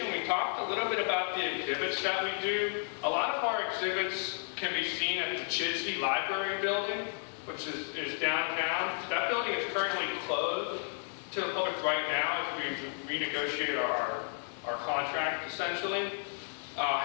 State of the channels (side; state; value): right; silent; 56 dB below the other